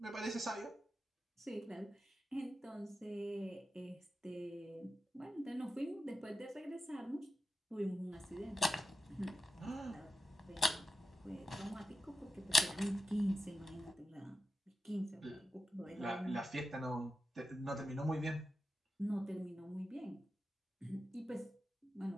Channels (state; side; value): normal; both; correlation 0.90